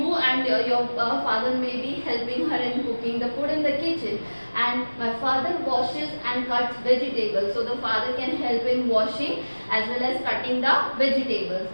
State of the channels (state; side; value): inverted; both; correlation -1.00